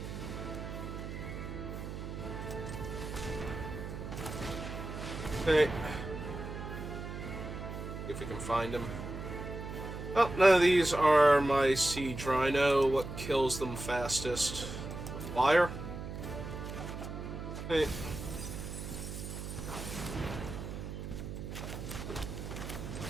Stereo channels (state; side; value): noise; right; hum, 7 dB below the sound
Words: Okay. If we can find him. Oh, none of these are my Siege Rhino. What kills them fastest? The Flyer? Okay.